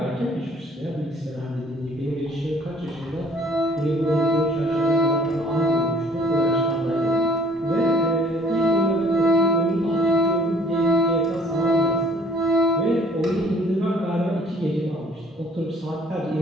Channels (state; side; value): normal; both; correlation 0.56